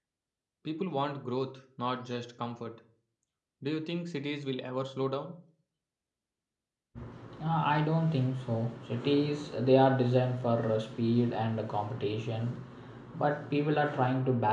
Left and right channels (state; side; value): identical; both; correlation 1.00